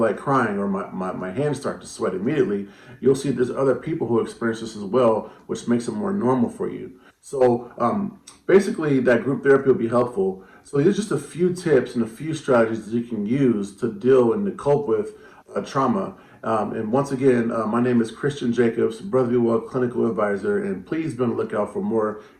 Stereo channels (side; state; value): both; identical; correlation 1.00